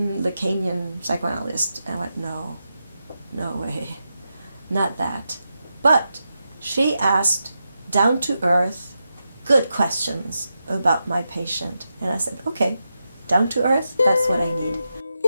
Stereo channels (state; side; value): inverted; both; correlation -0.88